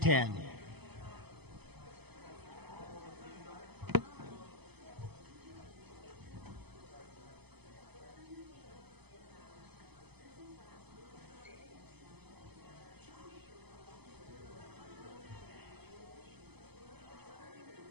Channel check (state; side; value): late; left; 0.98 ms